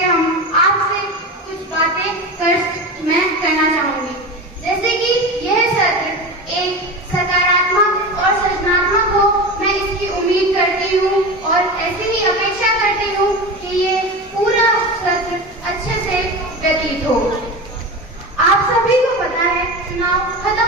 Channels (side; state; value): both; normal; correlation 0.26